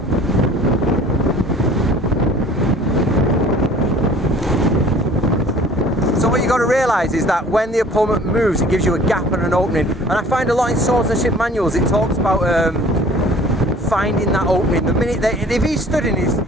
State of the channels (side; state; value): both; normal; correlation 0.50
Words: got to realise is that when the opponent moves, it gives you a gap and an opening. And I find a lot in swordsmanship manuals, it talks about finding that opening. The minute if he stood in his